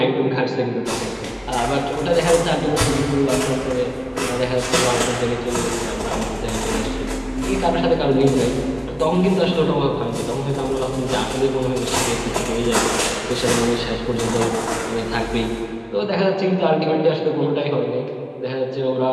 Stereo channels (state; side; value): identical; both; correlation 1.00